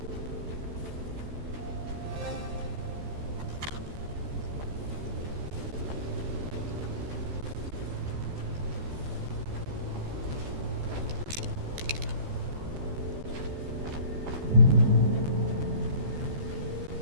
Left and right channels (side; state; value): left; late; 14 ms